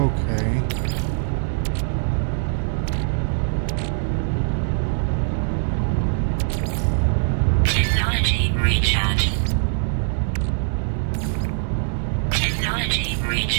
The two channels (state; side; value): silent; left; digital silence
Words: Technology recharge. Technology